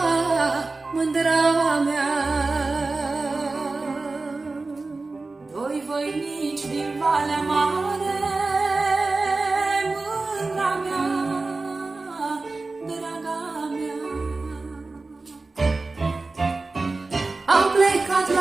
mândra mea. Doi voinici din Valea Mare, mândra mea, draga mea. Au plecat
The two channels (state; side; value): quieter; left; 3.6 dB